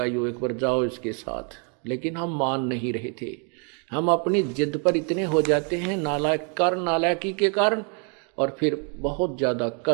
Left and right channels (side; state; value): left; quieter; 39.3 dB